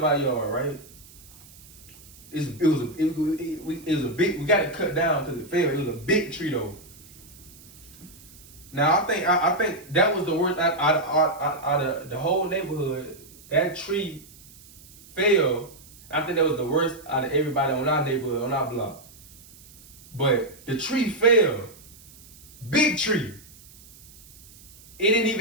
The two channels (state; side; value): noise; right; hiss, 22 dB below the sound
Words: our yard, right? It was a big. We got it cut down because it fell. It was a big tree though. Now I think that was the worst out of the whole neighborhood. That tree fell. I think that was the worst out of everybody on our neighborhood, on our block. But the tree fell. Big tree.